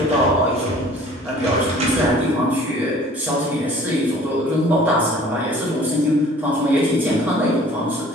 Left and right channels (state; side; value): normal; both; correlation 0.50